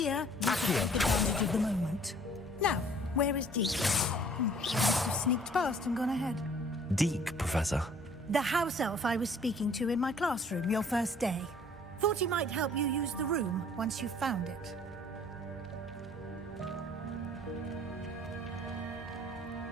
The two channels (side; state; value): both; normal; correlation 0.55